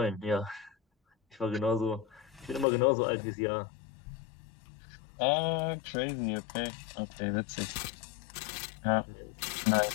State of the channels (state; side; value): drops out; right; at 2.7 s